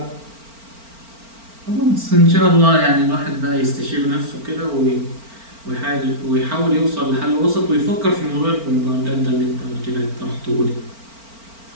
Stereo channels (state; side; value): late; left; 4.4 ms